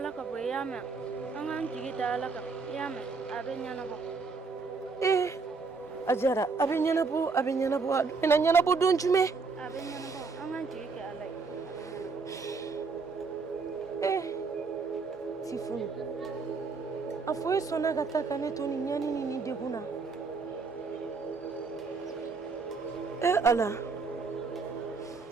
ka bo yama angan jigi da ala ka yama abe nyana bo Ajara abe ɲɛnabɔ bɛna ɲɛnabɔ don jumɛn abe nyana bo angan jigi ke ala Tifun a fɔ e sɔnna ka taa ka ne to ni ɲani ni degun na Ala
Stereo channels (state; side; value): quieter; left; 4.6 dB